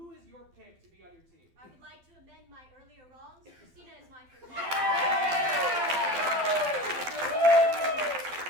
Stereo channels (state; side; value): late; left; 12 ms